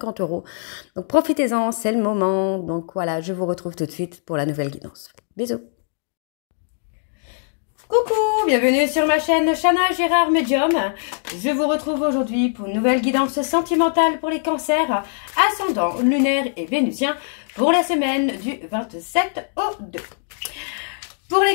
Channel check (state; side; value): silent; right; digital silence